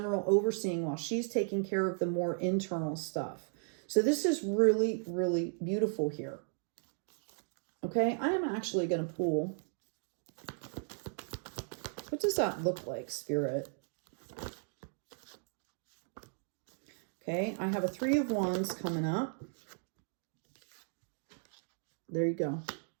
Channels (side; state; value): left; silent; 54 dB below the other